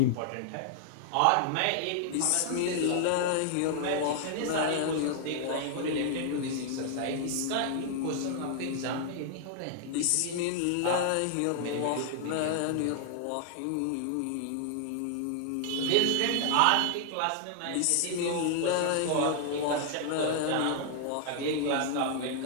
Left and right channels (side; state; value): both; different; correlation 0.00